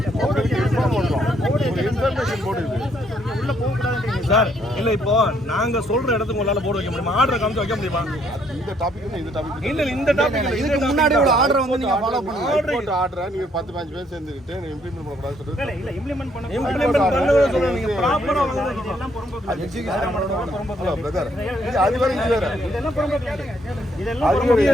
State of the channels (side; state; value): both; normal; correlation 0.69